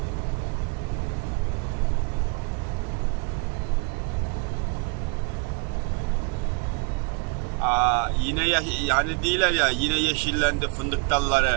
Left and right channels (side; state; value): left; quieter; 33.6 dB